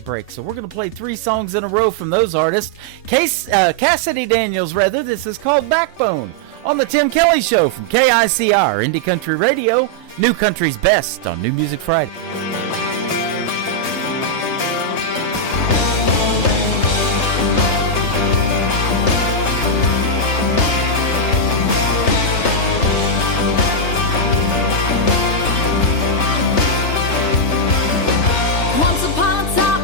So we're going to play 3 songs in a row from those artists. Cassidy Daniels, rather. This is called Backbone on the Tim Kelly Show from KICR, Indie Country Radio, New Country's Best on New Music Friday. Once upon a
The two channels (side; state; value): right; late; 3.3 ms